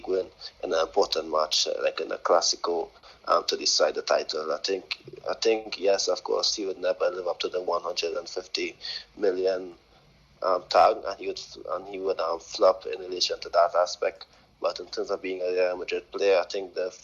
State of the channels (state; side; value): identical; both; correlation 1.00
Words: win in an important match, like in a Clásico, to decide the title. I think yes, of course, he would never live up to the 150 million tag, and he would flop in relation to that aspect. But in terms of being a Real Madrid player, I think the